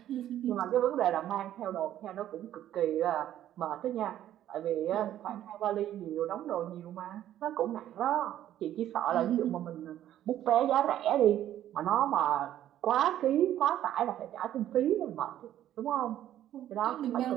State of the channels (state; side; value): quieter; left; 12.0 dB